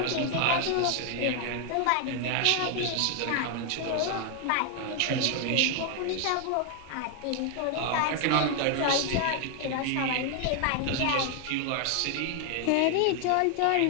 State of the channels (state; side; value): different; both; correlation 0.00